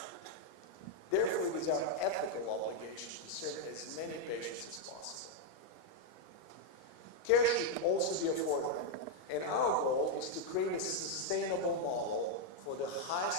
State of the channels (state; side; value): late; right; 38 ms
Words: Therefore, it is our ethical obligation to serve as many patients as possible. Care should also be affordable, and our goal is to create a sustainable model for the